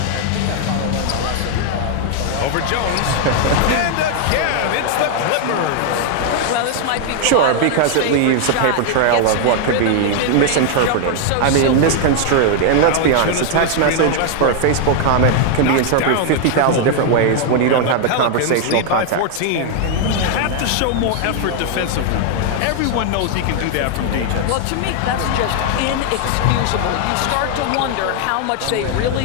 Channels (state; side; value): different; both; correlation 0.00